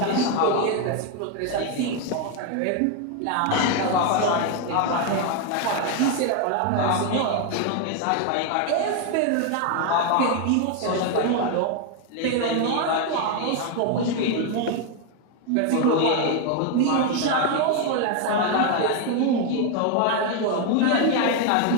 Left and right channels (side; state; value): both; different; correlation 0.01